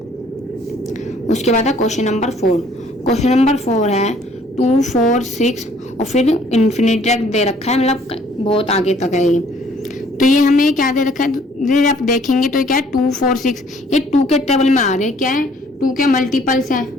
उसके बाद है क्वेश्चन नंबर 4। क्वेश्चन नंबर 4 है 2 4 6 और फिर इन्फिनिटी तक दे रखा है, मतलब बहुत आगे तक है ये। तो ये हमें क्या दे रखा है, आप देखेंगे तो क्या है 2 4 6, ये 2 के टेबल में आ रहे हैं, क्या है 2 के मल्टीपल्स हैं।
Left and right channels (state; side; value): normal; both; correlation 0.60